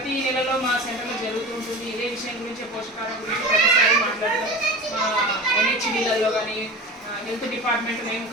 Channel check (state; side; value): normal; both; correlation 0.32